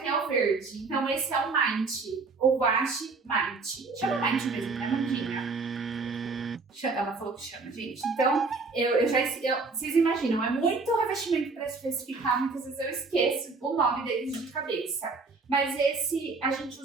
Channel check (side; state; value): left; quieter; 4.1 dB